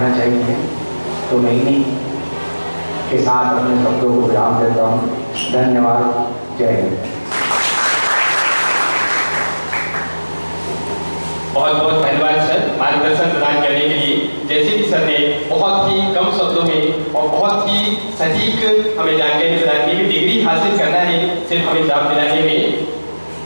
चाहिए। तो मैं इन्हीं के साथ अपने शब्दों को विराम देता हूँ। धन्यवाद। जय हिंद। बहुत बहुत धन्यवाद सर मार्गदर्शन प्रदान करने के लिए। जैसे कि सर ने बहुत ही कम शब्दों में और बहुत ही सटीक हमें जानकारी प्रदान की कि डिग्री हासिल करना है सिर्फ हमें जॉब दिलाने में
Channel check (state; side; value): inverted; both; correlation -1.00